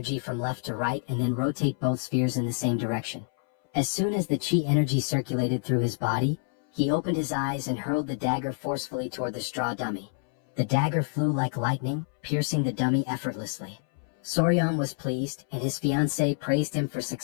from left to right and then rotate both spheres in the same direction. As soon as the chi energy circulated through his body, he opened his eyes and hurled the dagger forcefully toward the straw dummy. The dagger flew like lightning, piercing the dummy effortlessly. Soryang was pleased, and his fiancée praised him for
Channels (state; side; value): silent; right; 60 dB below the other